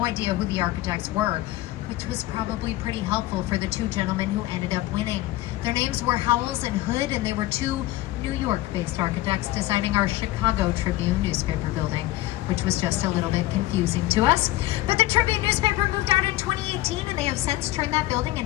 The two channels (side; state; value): right; quieter; 16.7 dB